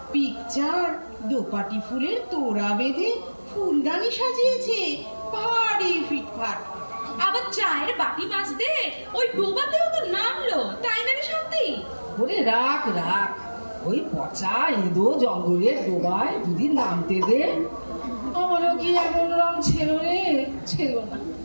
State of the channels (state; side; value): inverted; both; correlation -1.00